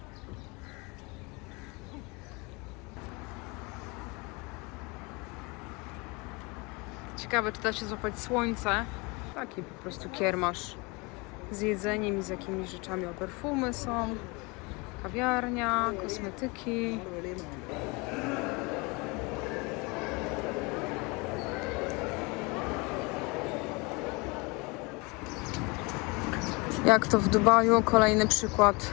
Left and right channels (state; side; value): quieter; right; 27.5 dB